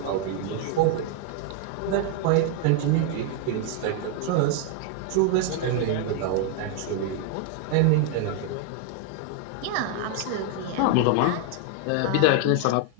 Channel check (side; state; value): both; different; correlation 0.00